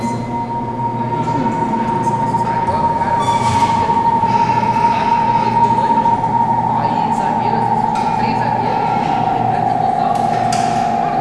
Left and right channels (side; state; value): both; identical; correlation 1.00